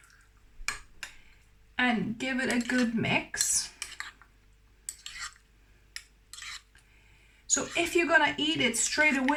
And give it a good mix. So if you're gonna eat it straight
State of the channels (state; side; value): identical; both; correlation 1.00